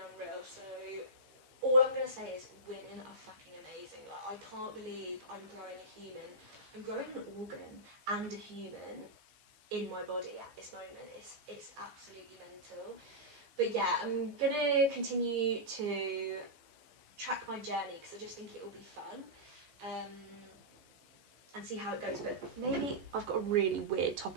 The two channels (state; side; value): late; left; 15 ms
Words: unreal. So all I'm gonna say is women are fucking amazing. Like I can't believe I'm growing a human. I'm growing an organ and a human in my body at this moment. It's absolutely mental. But yeah, I'm gonna continue to track my journey because I just think it will be fun. And see how it goes. But maybe I've got a really weird